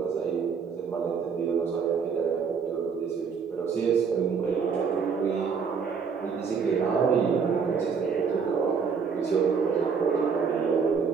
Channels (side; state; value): left; quieter; 6.0 dB